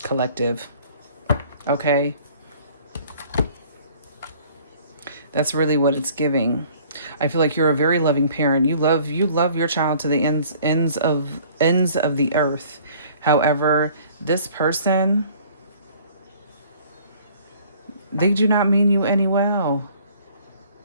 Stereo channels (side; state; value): both; inverted; correlation -0.54